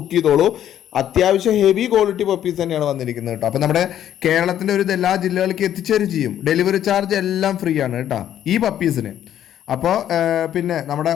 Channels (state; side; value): quieter; right; 10.9 dB